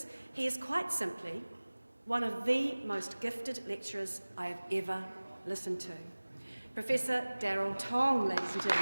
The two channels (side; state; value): both; inverted; correlation -1.00